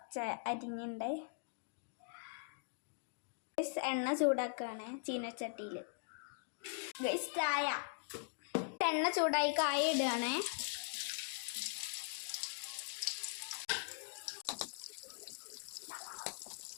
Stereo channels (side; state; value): right; silent; digital silence